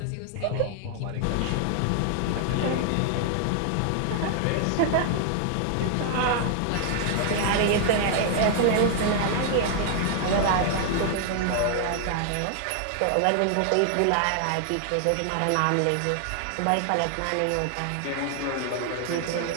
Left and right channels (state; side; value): different; both; correlation 0.00